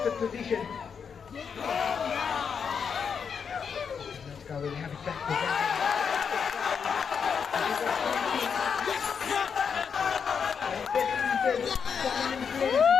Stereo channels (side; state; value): right; quieter; 6.6 dB